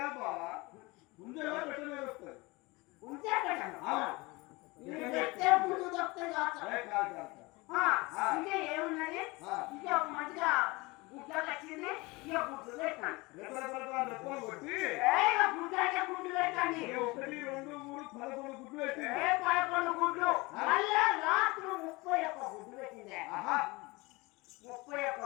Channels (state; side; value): quieter; right; 23.9 dB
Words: ఉంచే పెట్టను పెట్టే ముందు దొక్కుతుంది కాదు. ఇక ఏమున్నది, ఇక ఒక మంచిగా గుడ్డ వచ్చింది. ఇక గుడ్లు పెట్టాను. గుడ్డు అంటే గుడ్డు పెట్టండి. 11 గుడ్లు పెట్టి 11 గుడ్లు మళ్ళా రాత్రి 31 గుడ్లు పెట్టిందే. 31